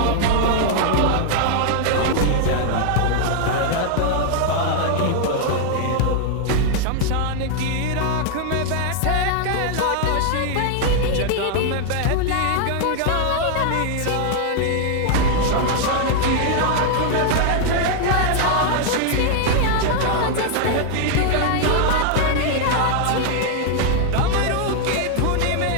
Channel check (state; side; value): different; both; correlation 0.00